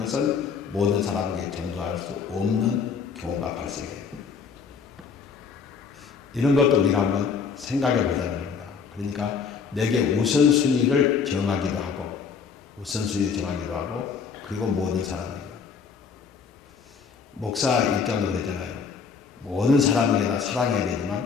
모든 사람에게 전도할 수 없는 경우가 발생해요. 이런 것도 우리가 한번 생각해 보자는 겁니다. 그러니까 내게 우선순위를 정하기도 하고 그리고 모든 사람에게. 목사 입장도 그랬잖아요. 모든 사람에게 다 사랑해야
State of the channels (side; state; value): right; quieter; 6.0 dB